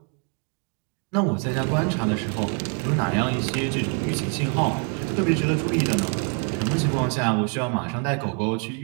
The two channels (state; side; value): quieter; left; 34.5 dB